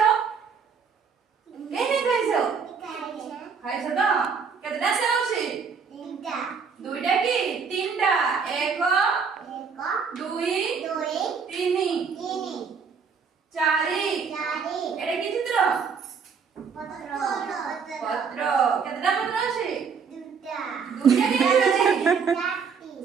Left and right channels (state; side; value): quieter; left; 5.9 dB